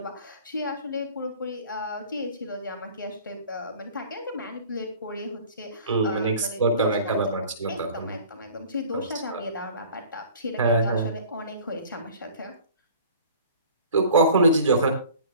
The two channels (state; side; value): inverted; both; correlation -0.46